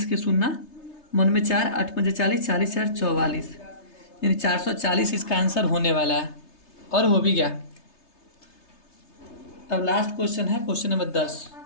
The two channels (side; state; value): right; late; 3.3 ms